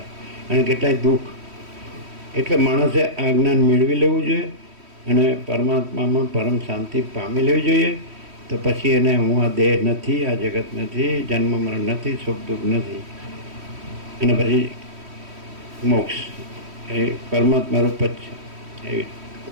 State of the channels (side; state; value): left; late; 3.1 ms